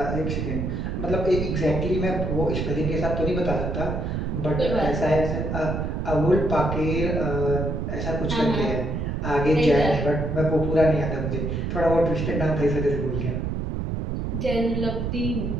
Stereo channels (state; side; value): noise; right; rumble, 2 dB below the sound